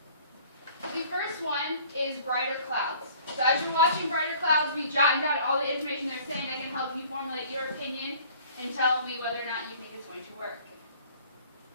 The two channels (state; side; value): inverted; both; correlation -0.51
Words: The first one is brighter clouds. So as you're watching brighter clouds, we jotting down all the information they're saying that can help you formulate your opinion and tell me whether or not you think it's going to work.